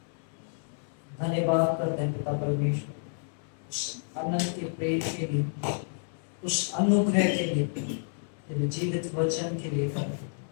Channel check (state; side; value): silent; right; 58 dB below the other